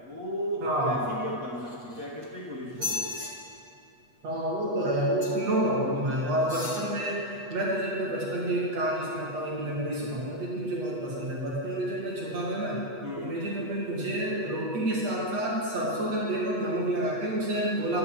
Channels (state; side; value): late; left; 8.3 ms